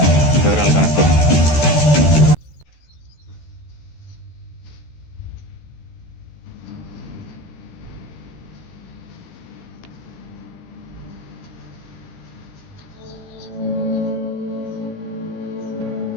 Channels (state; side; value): late; right; 14 ms